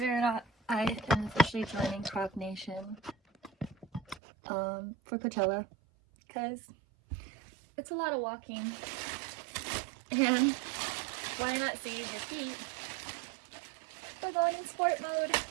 it or not, I am officially joining Croc Nation for Coachella because it's a lot of walking, and why not save your feet? We're going in sport mode.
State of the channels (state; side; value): drops out; left; at 4.2 s